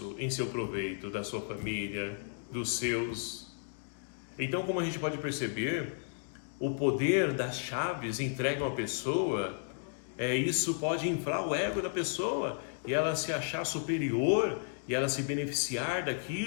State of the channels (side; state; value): right; silent; digital silence